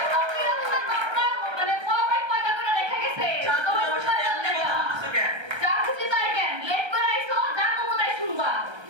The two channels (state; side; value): late; left; 1.3 ms